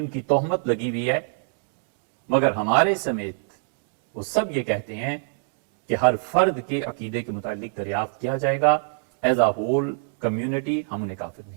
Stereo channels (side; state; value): left; silent; digital silence